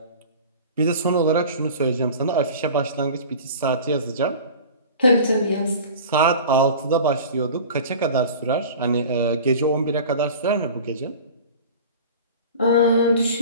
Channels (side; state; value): both; inverted; correlation -0.39